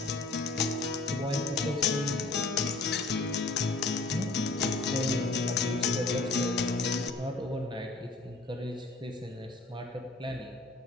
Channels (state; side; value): quieter; right; 3.3 dB